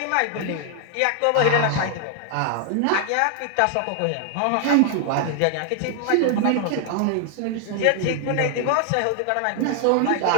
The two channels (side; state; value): both; different; correlation 0.00